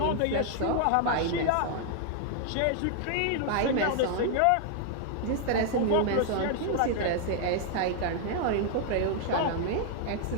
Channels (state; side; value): different; both; correlation 0.00